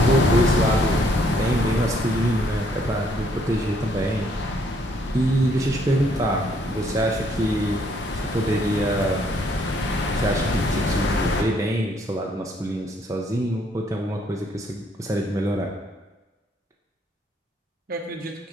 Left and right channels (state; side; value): normal; both; correlation 0.67